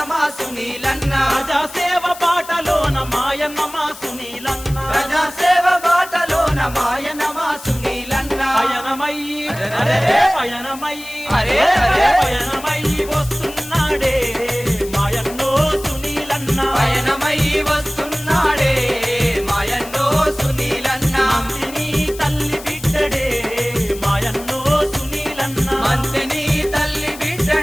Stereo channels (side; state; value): left; noise; hiss, 15 dB below the sound